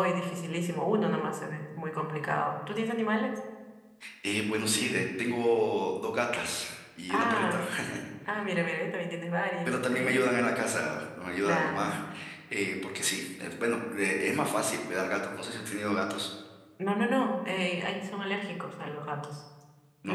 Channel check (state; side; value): identical; both; correlation 1.00